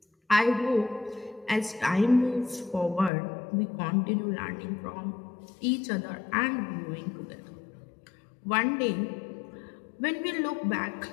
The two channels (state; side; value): drops out; right; at 3.1 s